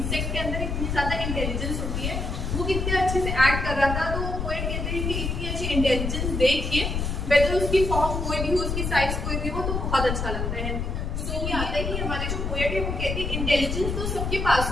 के अंदर इतनी ज्यादा इंटेलिजेंस होती है, वो कितने अच्छे से एक्ट कर रहा था। तो पोएट कहते हैं कि इतनी अच्छी इंटेलिजेंस देखिए वेदर उसकी फॉर्म कोई भी हो, उसकी साइज कोई भी हो, तो बहुत अच्छा लगता है। तो ये आता है कि हमारे जो पोएट है वो कहते हैं इंटेलिजेंस तो सबके पास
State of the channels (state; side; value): noise; left; rumble, 2 dB below the sound